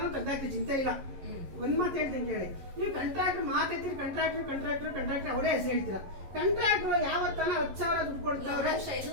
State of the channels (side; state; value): left; late; 11 ms